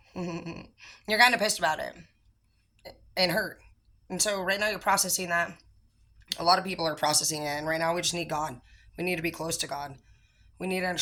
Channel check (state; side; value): identical; both; correlation 1.00